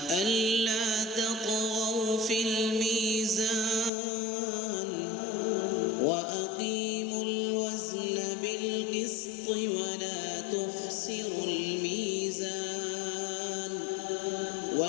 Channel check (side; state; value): right; drops out; at 3.9 s